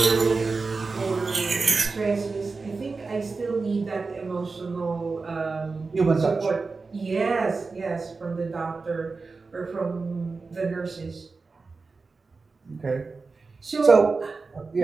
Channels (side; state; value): left; quieter; 4.2 dB